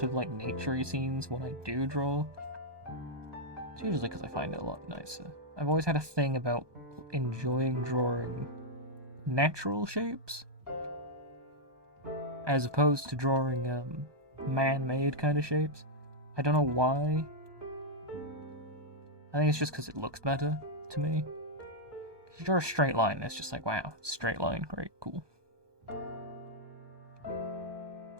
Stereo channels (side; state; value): left; late; 1.2 ms